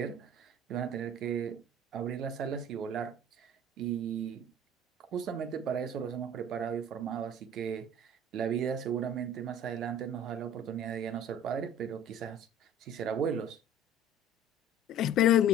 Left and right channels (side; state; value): both; normal; correlation 0.44